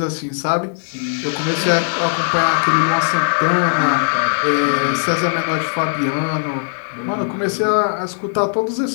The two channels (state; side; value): silent; right; digital silence